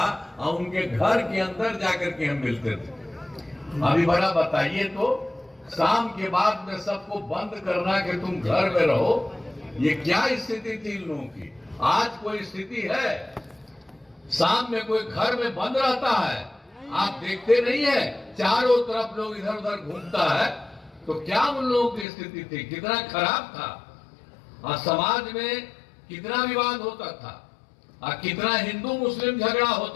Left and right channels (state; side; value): drops out; right; at 22.1 s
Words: और उनके घर के अंदर जाकर के हम मिलते थे। अभी बड़ा बताइए तो शाम के बाद में सबको बंद करना कि तुम घर में रहो, ये क्या स्थिति थी इन लोगों की। आज कोई स्थिति है शाम में कोई घर में बंद रहता है, आप देखते नहीं है चारों तरफ लोग इधर उधर घूमता है, तो क्या उन लोगों की स्थिति थी, कितना खराब था। और समाज में कितना विवाद होता था और कितना हिंदू मुस्लिम झगड़ा